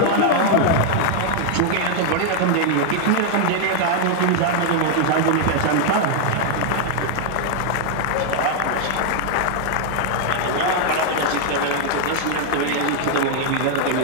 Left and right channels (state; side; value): different; both; correlation 0.00